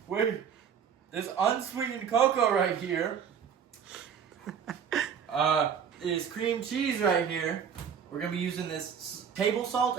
Wait. This unsweetened cocoa right here. Is cream cheese right here. We're going to be using this table salt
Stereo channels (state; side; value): quieter; left; 7.6 dB